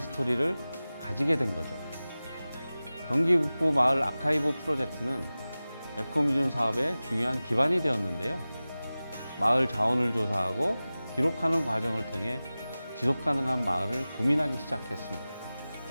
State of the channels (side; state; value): both; inverted; correlation -0.97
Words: 가지게 된 거죠. 경기 북부 마을 아카이브 프로젝트는 에코뮤즘 사업의 중요한 기반이 되었는데요. 마을 자원을 조사하고 기록하는 과정을 통해 지속가능한 마을을 고민하기 시작했습니다.